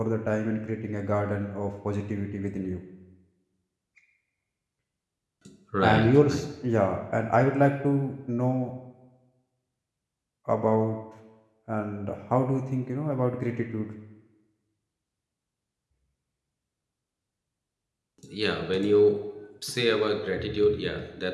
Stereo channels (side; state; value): both; identical; correlation 1.00